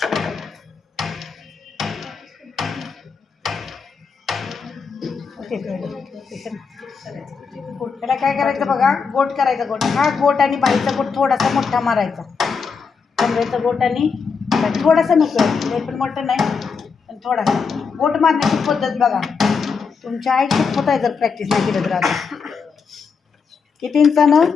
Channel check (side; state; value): right; quieter; 5.5 dB